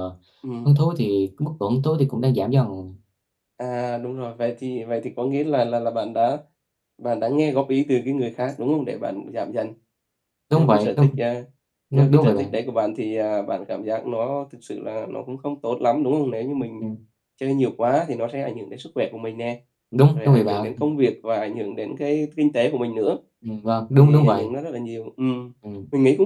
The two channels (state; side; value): identical; both; correlation 1.00